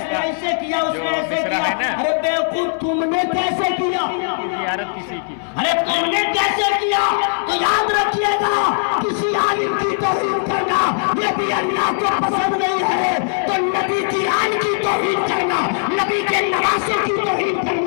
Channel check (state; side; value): silent; right; 61 dB below the other